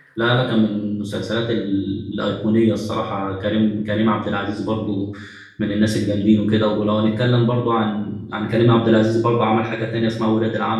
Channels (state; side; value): identical; both; correlation 1.00